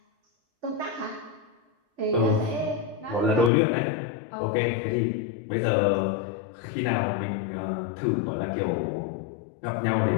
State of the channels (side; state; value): right; drops out; at 3.5 s